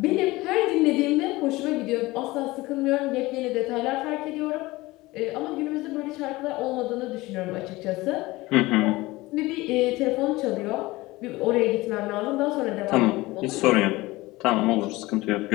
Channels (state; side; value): quieter; right; 20.1 dB